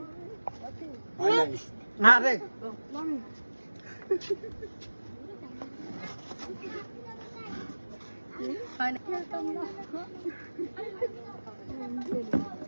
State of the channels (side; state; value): both; inverted; correlation -1.00